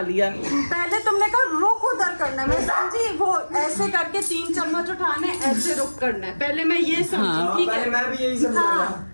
लिया। पहले तुमने कहा रुक उधर करना है, मैं समझी वो ऐसे करके 3 चम्मच उठाने, ऐसे रुक करना है। पहले मैं ये समझी, हाँ, ठीक पहले है। मैं भी यही समझ रहा था। हाँ,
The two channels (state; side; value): inverted; both; correlation -1.00